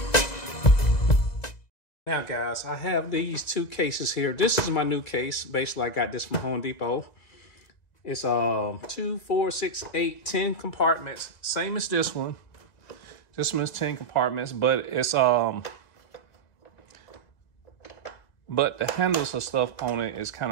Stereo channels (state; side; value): late; right; 2.0 ms